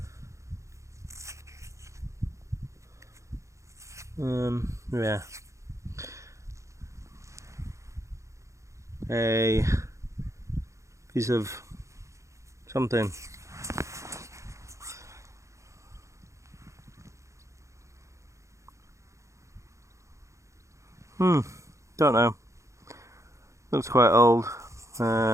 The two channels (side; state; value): left; late; 0.15 ms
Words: Yeah. A piece of something. Don't know. Looks quite old.